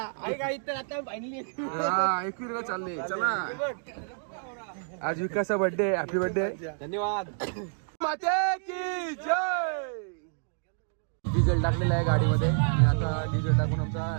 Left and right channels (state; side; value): silent; left; digital silence